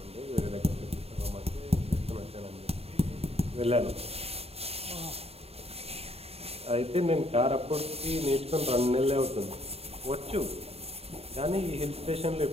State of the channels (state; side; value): late; left; 0.29 ms